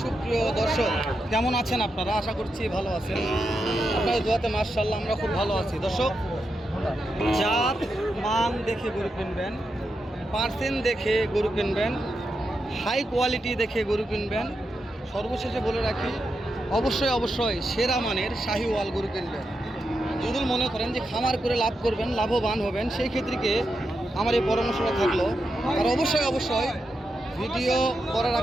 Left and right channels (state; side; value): normal; both; correlation 0.86